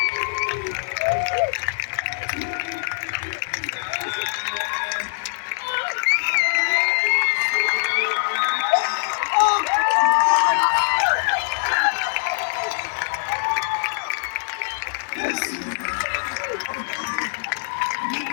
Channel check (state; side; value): silent; right; 61 dB below the other